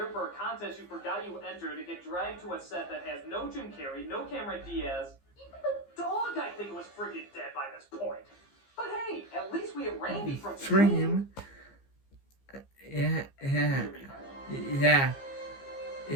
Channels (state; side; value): late; right; 15 ms